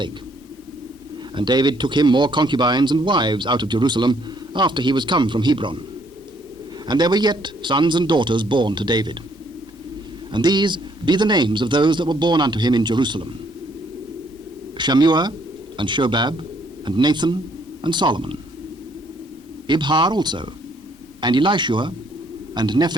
And David took him more concubines and wives out of Jerusalem after he was come from Hebron. And there were yet sons and daughters born to David. And these be the names of those that were born unto him in Jerusalem: Shammua, and Shobab, and Nathan, and Solomon. Ibhar also, and Elishua, and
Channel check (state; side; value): normal; both; correlation 0.67